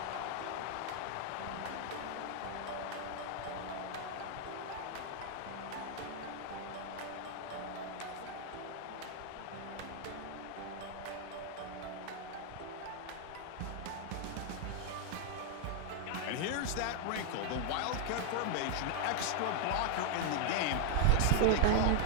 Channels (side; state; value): both; different; correlation 0.00